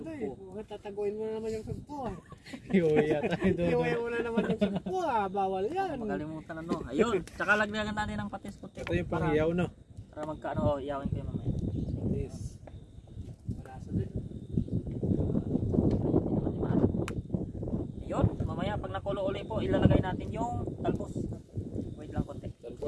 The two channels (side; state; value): both; identical; correlation 1.00